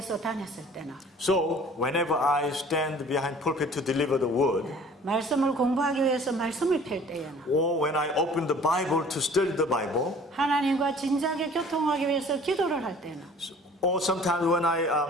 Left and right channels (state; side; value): normal; both; correlation 0.50